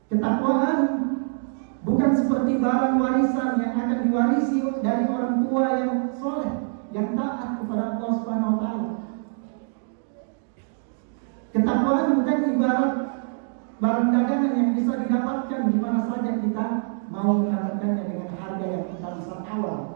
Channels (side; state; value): left; silent; digital silence